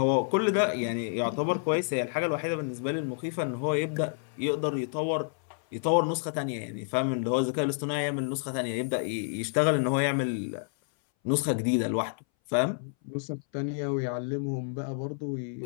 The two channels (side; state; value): right; silent; 58 dB below the other